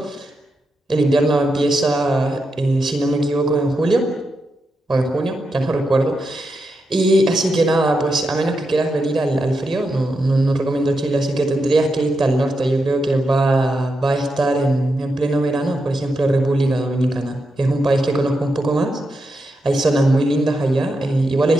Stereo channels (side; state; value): both; normal; correlation 0.86